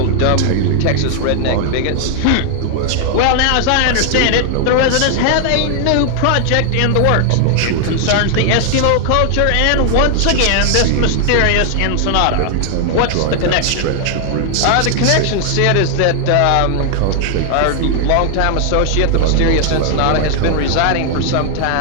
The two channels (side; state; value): both; different; correlation 0.00